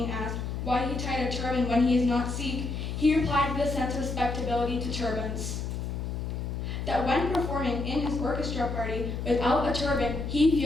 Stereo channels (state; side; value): noise; left; hum, 4 dB below the sound